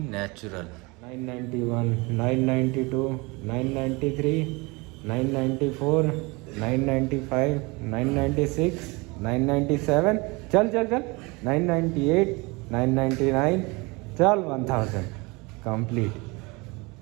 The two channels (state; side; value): quieter; left; 26.0 dB